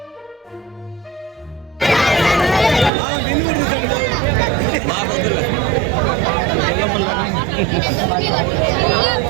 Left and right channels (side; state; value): left; drops out; at 2.9 s